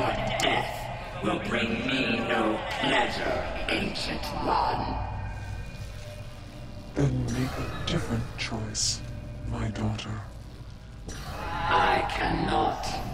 death will bring me no pleasure, Ancient One. Then make a different choice, my daughter. I cannot.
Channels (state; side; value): identical; both; correlation 1.00